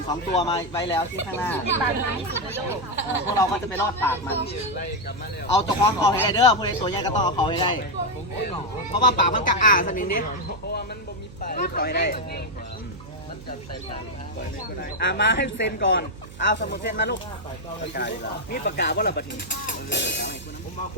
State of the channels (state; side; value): noise; right; hum, 17 dB below the sound